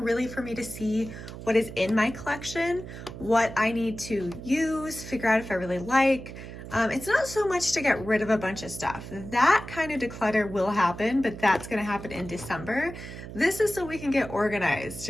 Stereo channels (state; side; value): noise; right; hum, 12 dB below the sound